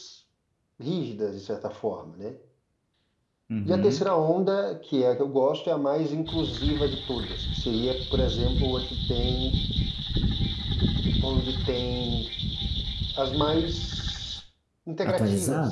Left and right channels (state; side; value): identical; both; correlation 1.00